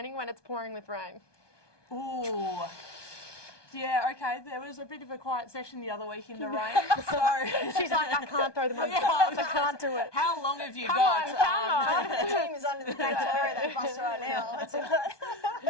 when it's pouring with rain? Ooh. Yeah, okay. There was a bit of a quiet session the other week in the rain. So She's like, I can't throw them under the bus. I can't do it. how long have you Come got? on. The team is under the bus right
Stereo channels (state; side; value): late; right; 1.2 ms